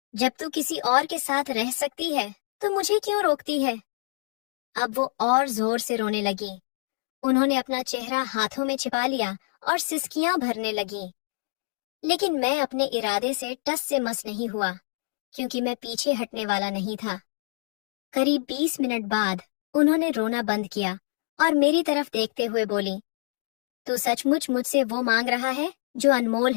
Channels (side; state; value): right; silent; digital silence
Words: जब तू किसी और के साथ रह सकती है तो मुझे क्यों रोकती है? अब वो और जोर से रोने लगी। उन्होंने अपना चेहरा हाथों में छिपा लिया और सिसकियां भरने लगी। लेकिन मैं अपने इरादे से टस से मस नहीं हुआ, क्योंकि मैं पीछे हटने वाला नहीं था। करीब 20 मिनट बाद उन्होंने रोना बंद किया और मेरी तरफ देखते हुए बोली, तू सचमुच मुझसे वो मांग रहा है जो अनमोल